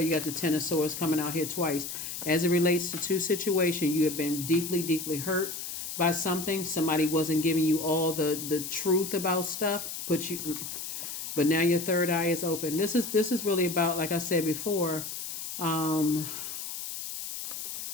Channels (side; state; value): left; noise; hiss, 7 dB below the sound